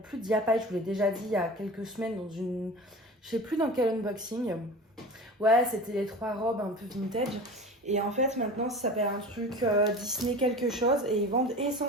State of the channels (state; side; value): normal; both; correlation 0.36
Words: Diapaille. Je vous l'ai déjà dit il y a quelques semaines dans une... Je sais plus dans quel unboxing. Ouais, c'était les 3 robes un peu vintage. Et en fait, maintenant, ça s'appelle un truc Disney quelque chose. Et ils vendent